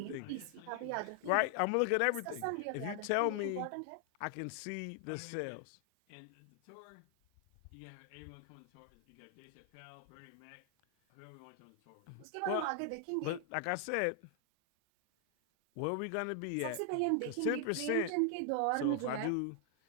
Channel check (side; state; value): both; different; correlation 0.00